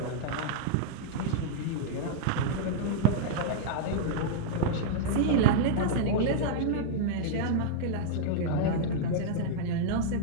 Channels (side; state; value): both; different; correlation -0.02